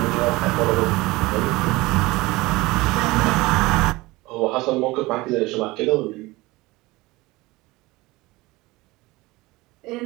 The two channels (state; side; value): quieter; left; 21.1 dB